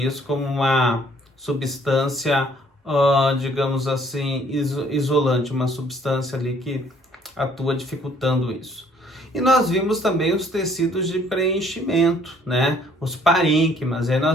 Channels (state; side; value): normal; both; correlation 0.61